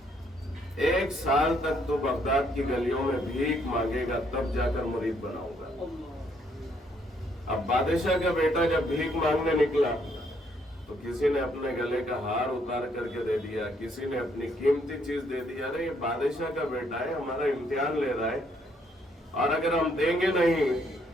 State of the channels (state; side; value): normal; both; correlation 0.70